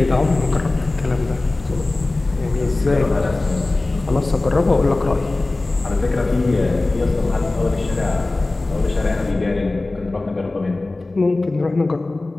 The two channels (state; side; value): quieter; right; 3.1 dB